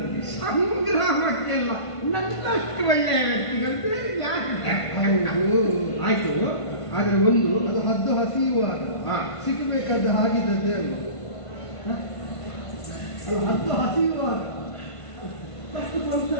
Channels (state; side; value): late; right; 1.5 ms